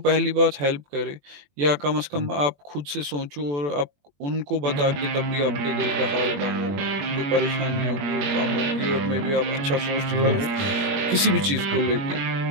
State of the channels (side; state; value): left; late; 21 ms